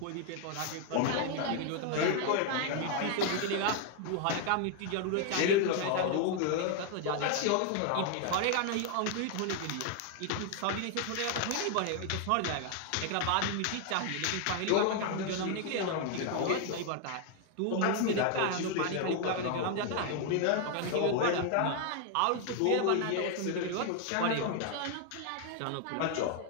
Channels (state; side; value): different; both; correlation 0.00